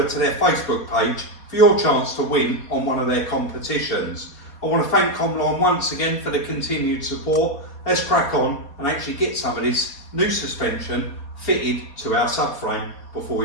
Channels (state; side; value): late; right; 4.2 ms